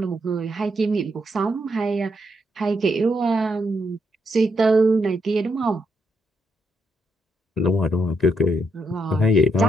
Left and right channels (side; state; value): both; normal; correlation 0.78